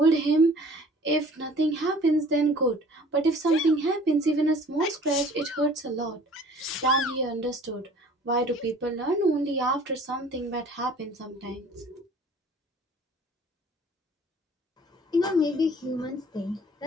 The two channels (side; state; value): both; normal; correlation 0.50